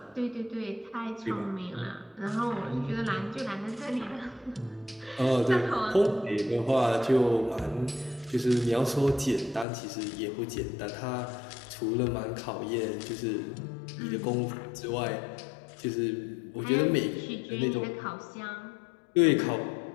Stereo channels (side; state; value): right; drops out; at 9.7 s